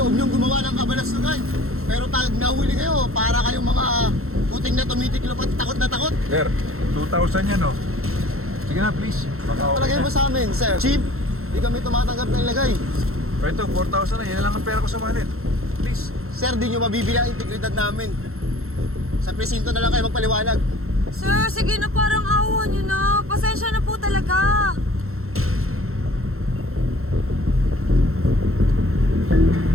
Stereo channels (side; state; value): left; late; 0.62 ms